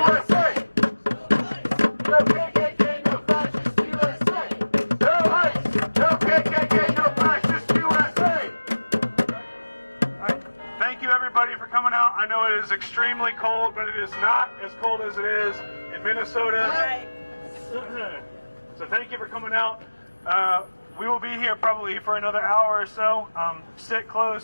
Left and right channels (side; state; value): both; inverted; correlation -1.00